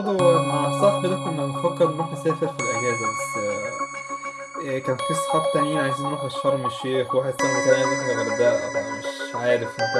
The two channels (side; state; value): both; identical; correlation 1.00